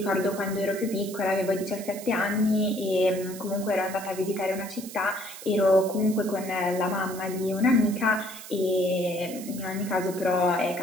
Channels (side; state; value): right; noise; hiss, 14 dB below the sound